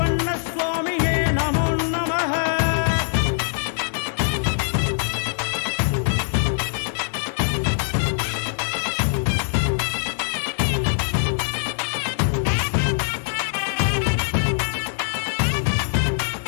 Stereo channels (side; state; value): right; silent; digital silence